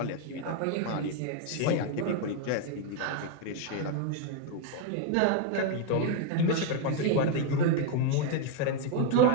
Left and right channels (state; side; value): different; both; correlation 0.01